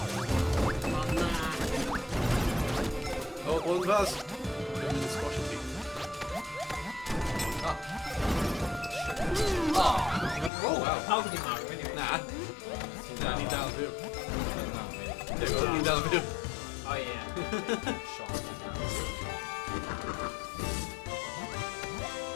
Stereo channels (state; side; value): drops out; right; at 10.5 s